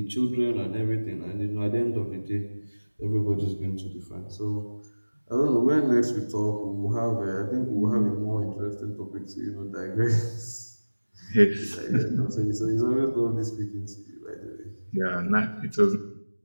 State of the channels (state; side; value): inverted; both; correlation -1.00